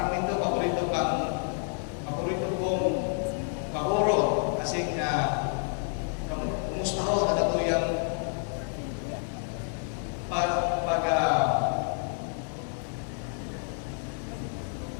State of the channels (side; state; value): right; silent; 58 dB below the other